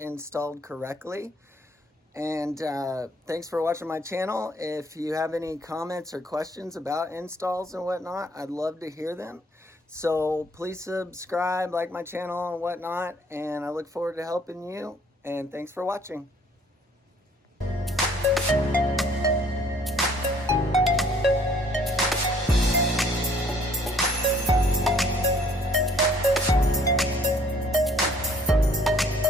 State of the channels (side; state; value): both; normal; correlation 0.60